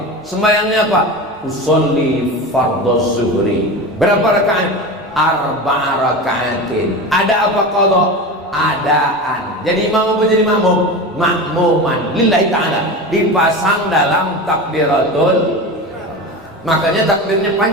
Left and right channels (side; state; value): both; normal; correlation 0.27